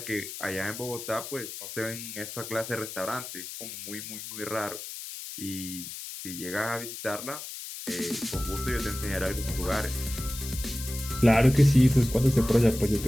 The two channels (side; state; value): left; noise; hiss, 10 dB below the sound